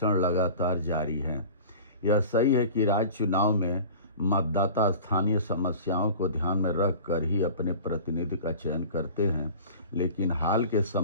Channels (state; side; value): inverted; both; correlation -0.40